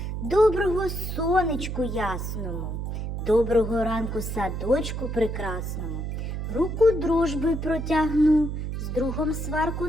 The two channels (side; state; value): right; noise; hum, 4 dB below the sound